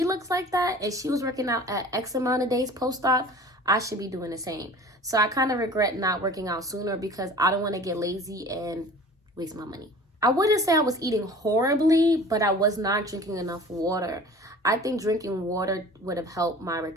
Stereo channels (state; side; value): normal; both; correlation 0.43